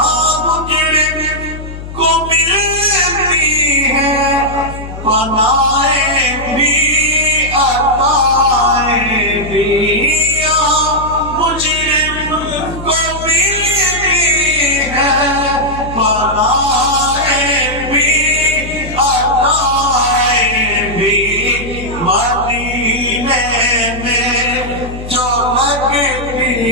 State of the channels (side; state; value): left; noise; hum, 10 dB below the sound